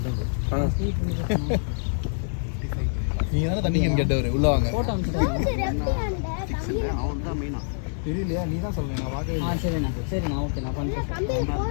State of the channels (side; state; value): right; silent; digital silence